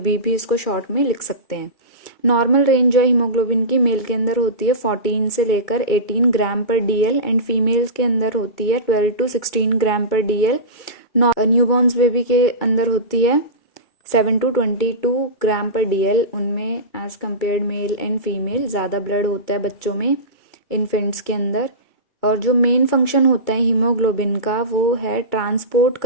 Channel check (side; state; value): right; late; 2.2 ms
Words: भी इसको शॉर्ट में लिख सकते हैं। नॉर्मल रेंज जो है हीमोग्लोबिन की मेल के अंदर होती है 14 से लेकर 18 ग्राम पर DL एंड फीमेल्स के अंदर होती है 12 to 16 gram per DL। Newborn's baby के अंदर होती है 7 to 22 ग्राम पर DL। उनमें as compared male and female ज़्यादा ब्लड होता है बच्चों में, इन्फेंट्स के अंदर। और जो मेन फंक्शन होता है हीमोग्लोबिन का वो है ट्रांसपोर्ट